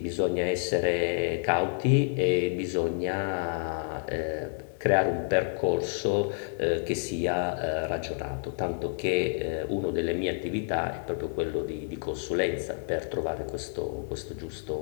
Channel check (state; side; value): silent; right; digital silence